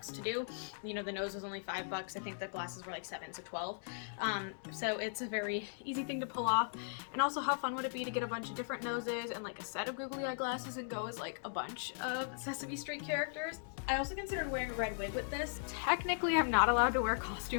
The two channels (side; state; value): right; silent; digital silence